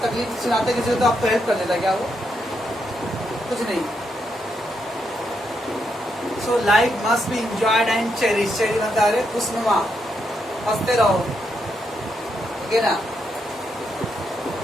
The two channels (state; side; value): normal; both; correlation 0.80